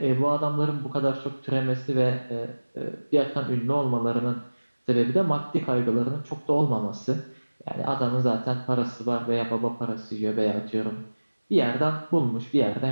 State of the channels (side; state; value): both; inverted; correlation -1.00